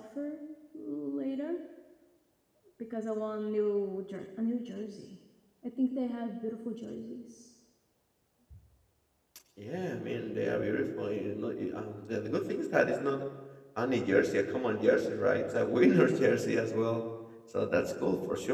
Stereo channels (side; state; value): both; identical; correlation 1.00